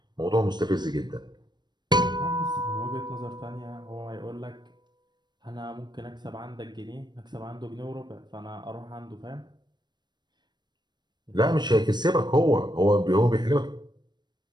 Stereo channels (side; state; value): left; late; 0.21 ms